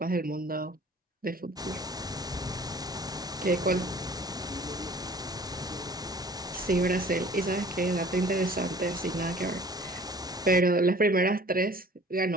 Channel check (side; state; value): both; normal; correlation 0.49